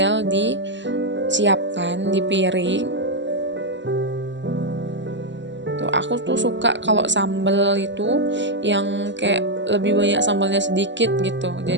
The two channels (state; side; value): late; left; 0.53 ms